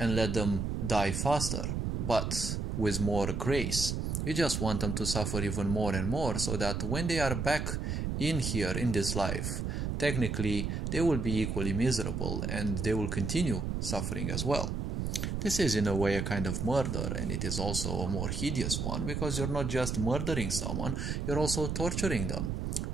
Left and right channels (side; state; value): right; noise; rumble, 1 dB below the sound